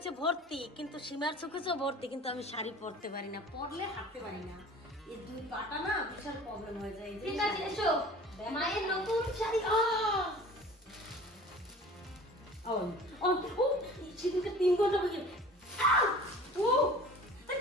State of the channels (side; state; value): both; normal; correlation 0.43